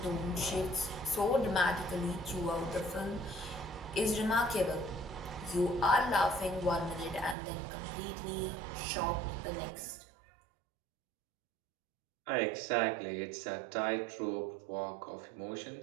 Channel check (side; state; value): left; drops out; at 7.4 s